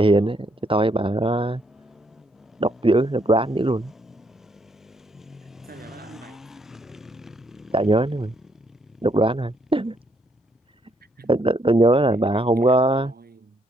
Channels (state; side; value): normal; both; correlation 0.72